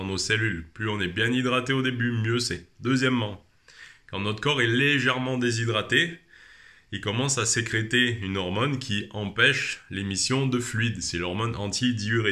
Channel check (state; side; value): identical; both; correlation 1.00